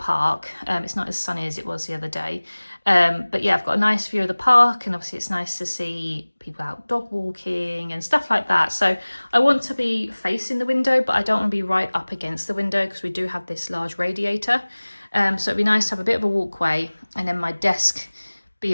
It's not as sunny as it was the other day. But yeah, I've got a nice view of the park, and obviously it's nice to see people out dog walking and stuff like that. So I want to be facing the window, but I don't want to be right up against the window because we do have this large radiator. So it'd be nice to have a bit of a walkway, and then my desk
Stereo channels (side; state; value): both; inverted; correlation -1.00